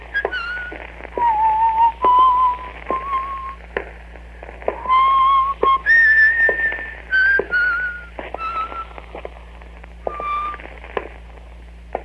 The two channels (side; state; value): both; identical; correlation 1.00